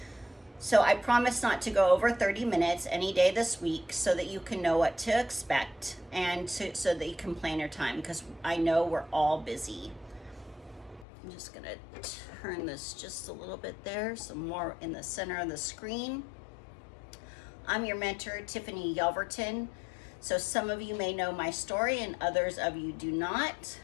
So I promise not to go over 30 minutes any day this week so that you can know what to expect and so that you can plan your time, because I know we're all busy. I'm just gonna turn this just a little bit there, some more in the center of the screen. I'm your mentor, Tiffany Yelverton. So some of you may know my story and others of you do not.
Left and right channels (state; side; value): drops out; right; at 11.1 s